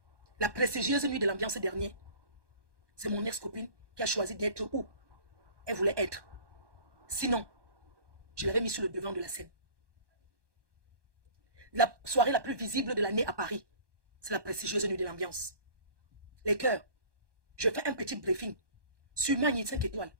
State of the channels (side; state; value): left; late; 1.2 ms